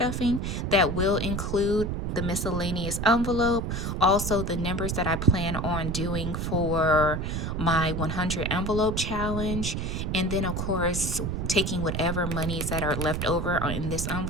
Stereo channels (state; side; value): noise; right; rumble, 2 dB below the sound